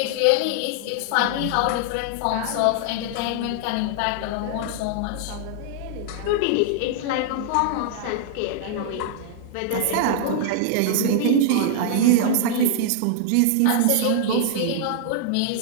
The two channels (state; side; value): different; both; correlation -0.01